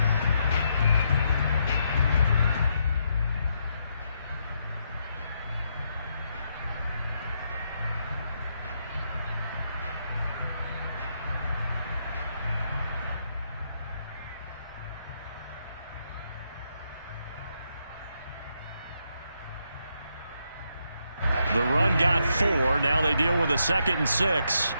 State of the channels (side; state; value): both; inverted; correlation -0.78